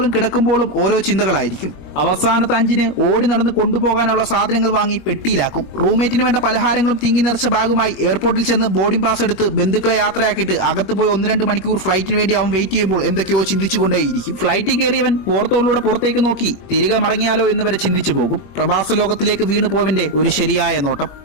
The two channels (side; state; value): right; late; 21 ms